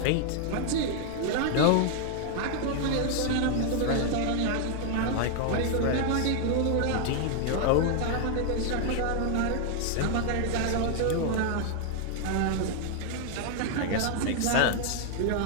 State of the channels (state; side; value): different; both; correlation 0.00